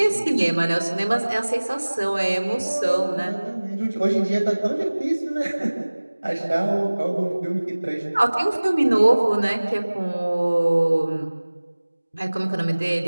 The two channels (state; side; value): inverted; both; correlation -1.00